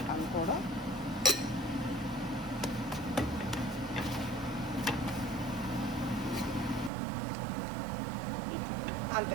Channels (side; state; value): left; drops out; at 6.9 s